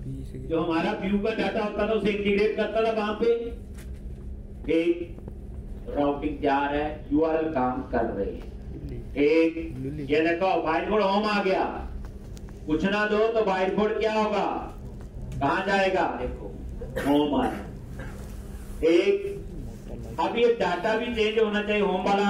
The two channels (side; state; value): both; identical; correlation 1.00